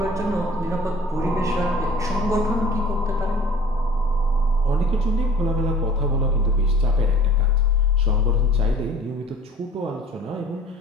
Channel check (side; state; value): both; normal; correlation 0.49